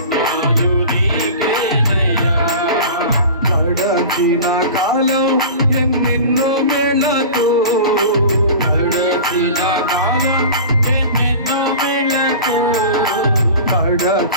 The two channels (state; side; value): inverted; both; correlation -0.35